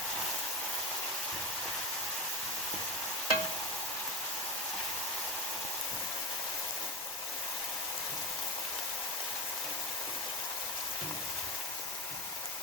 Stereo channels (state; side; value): normal; both; correlation 0.17